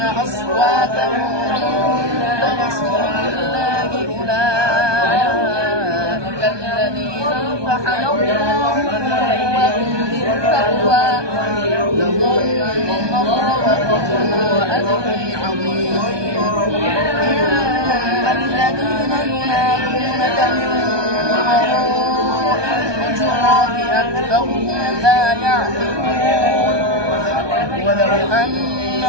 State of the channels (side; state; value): left; late; 1.2 ms